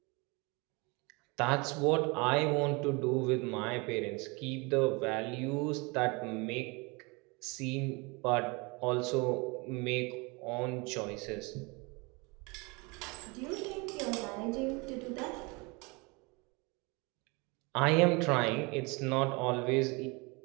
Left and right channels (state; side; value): quieter; left; 27.7 dB